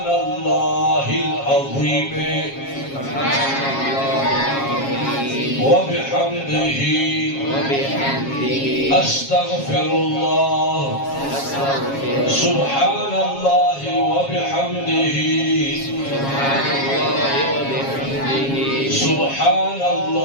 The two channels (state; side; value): late; right; 7.3 ms